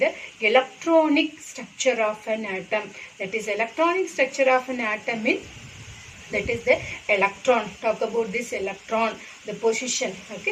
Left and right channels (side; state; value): both; identical; correlation 1.00